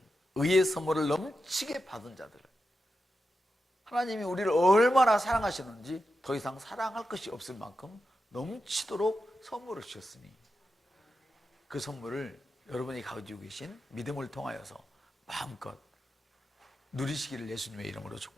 의의 선물을 넘치게 받은 자들. 하나님이 우리를 얼마나 사랑하시는지 더 이상 사랑할 것이 없을 만큼 넘치도록 선물을 주셨으니, 그 선물을 여러분이 가지고 계신 믿음을 통하여서 마음껏 누리시기를 예수님의 이름으로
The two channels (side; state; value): both; normal; correlation 0.89